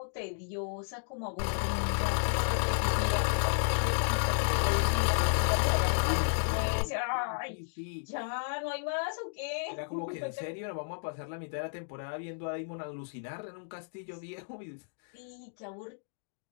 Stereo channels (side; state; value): right; silent; digital silence